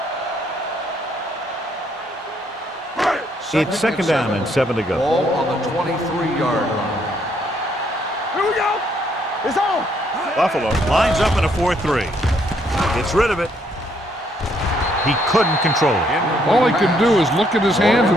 It's second down and 7 to go. Ball on the 23-yard line. Here we go. It's on. Buffalo lines up in a 4-3. Gets rid of it. He couldn't control it. All he can do is look at his hands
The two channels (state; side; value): normal; both; correlation 0.70